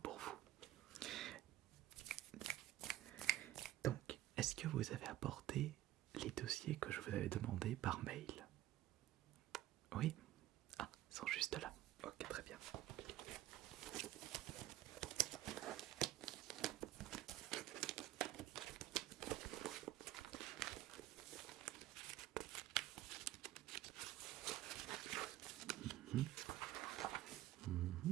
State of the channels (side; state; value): left; quieter; 14.2 dB